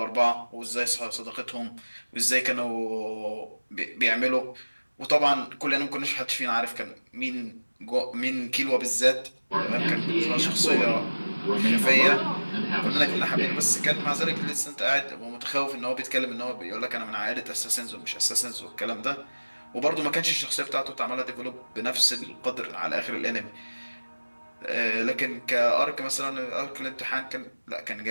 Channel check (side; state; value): both; inverted; correlation -1.00